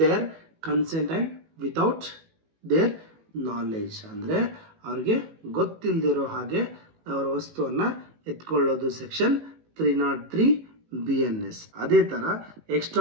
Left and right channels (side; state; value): left; late; 18 ms